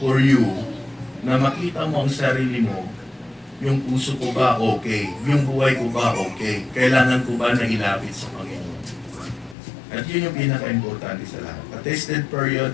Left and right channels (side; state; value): right; drops out; at 9.6 s